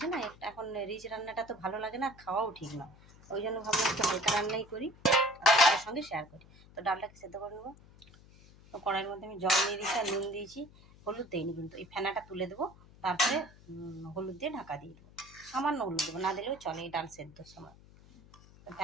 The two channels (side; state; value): left; noise; hum, 23 dB below the sound